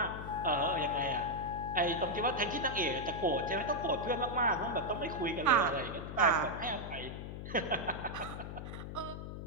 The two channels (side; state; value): left; noise; hum, 8 dB below the sound